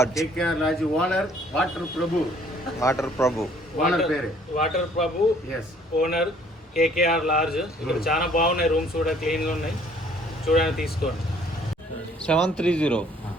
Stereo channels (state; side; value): normal; both; correlation 0.60